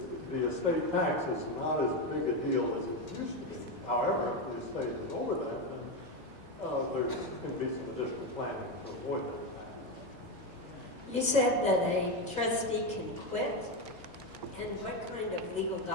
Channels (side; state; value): both; normal; correlation 0.12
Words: The estate tax is not as big a deal as it used to be. However, if the estate is over that, then there can be some additional planning to avoid that tax. You said that a trustee can quit, and what kind of legal